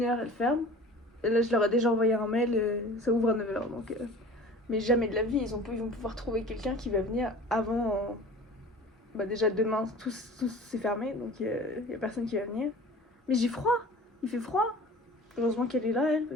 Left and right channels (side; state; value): both; normal; correlation 0.42